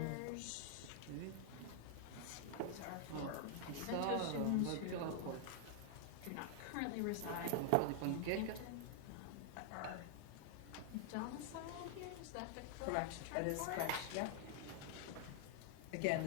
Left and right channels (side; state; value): both; different; correlation 0.00